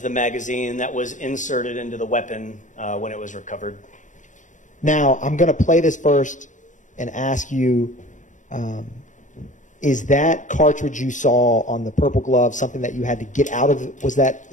the magazine that was inserted into the weapon when it was recovered. Now, I'm going to play this first and ask you, is that cartridge you saw on the purple glove something that you had to get out of? Was that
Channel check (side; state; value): right; late; 0.36 ms